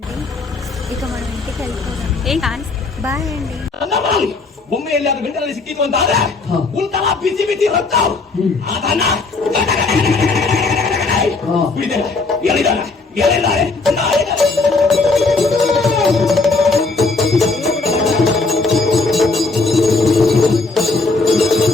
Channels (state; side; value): quieter; right; 3.8 dB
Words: ఇక మనం ఇంటికి వెళ్ళిపోదాం. బాయ్ ಅಂಡಿ. ಒಮ್ಮೆಯಲ್ಲಿ ಅದು ಬೆಂಡಲ್ಲಿ ಸಿಕ್ಕಿತು ಅಂತ ಆದ್ರೆ ಉಂಟಲ್ಲ ಬಿಸಿ ಬಿಸಿ ರಕ್ತ ಅದನ್ನ ಹೇಳಿದ್ದಾರೆ